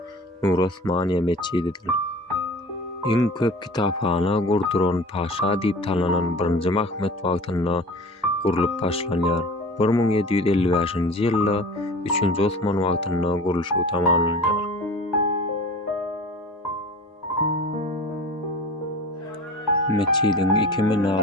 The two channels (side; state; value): both; normal; correlation 0.39